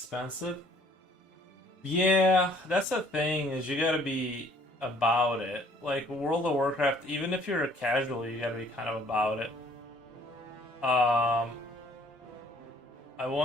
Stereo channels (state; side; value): normal; both; correlation 0.59